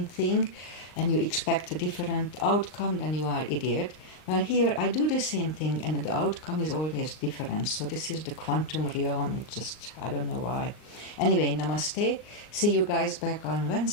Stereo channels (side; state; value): right; late; 39 ms